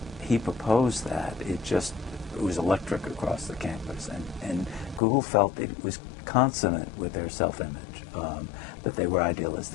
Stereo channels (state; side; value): drops out; right; at 5.0 s